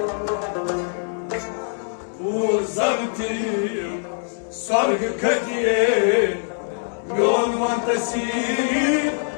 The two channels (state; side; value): silent; right; digital silence